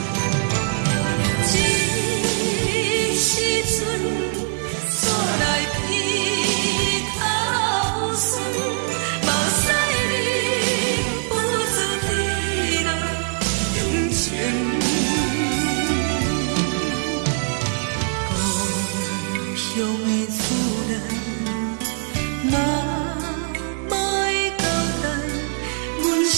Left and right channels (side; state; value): left; silent; 60 dB below the other